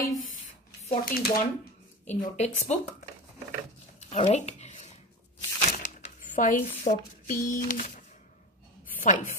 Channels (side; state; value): both; normal; correlation 0.27